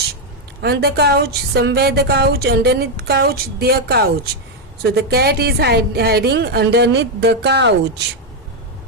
On the couch, somewhere the couch, underneath couch, their couch. So the cat is hiding underneath the couch.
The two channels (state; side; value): normal; both; correlation 0.02